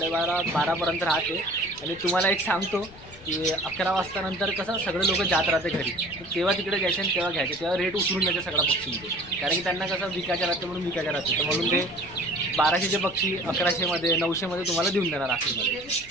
राहते. आणि तुम्हाला एक सांगतो की 11 वाजता नंतर कसं सगळे लोक जात राहते घरी, तर तेव्हा तिकडे जायचे आणि तेव्हा घ्यायचे, तेव्हा रेट उतरून जायचे सगळ्या पक्षींचे, कारण की त्यांना कसं विकायच्या राहते म्हणून विकायच्या राहते. तर म्हणून ते 1200चे पक्षी 1100मध्ये 900मध्ये तुम्हाला देऊन देणार आखरीमध्ये.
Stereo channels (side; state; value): left; noise; rumble, 21 dB below the sound